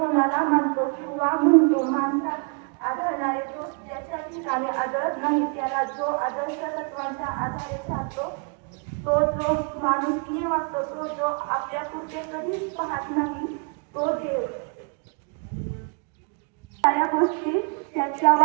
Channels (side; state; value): left; quieter; 38.2 dB